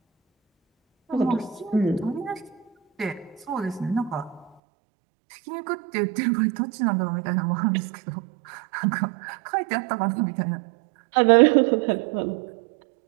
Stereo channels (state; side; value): drops out; left; at 4.5 s